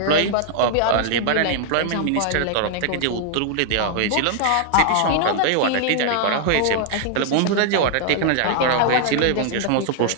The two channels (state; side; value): different; both; correlation 0.00